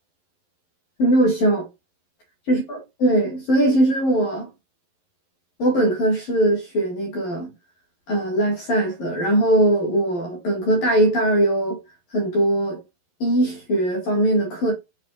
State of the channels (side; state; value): right; late; 11 ms